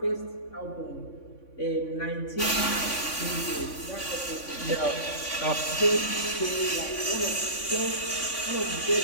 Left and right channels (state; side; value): late; right; 3.5 ms